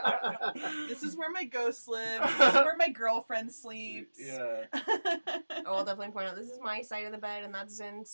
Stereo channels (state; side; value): inverted; both; correlation -1.00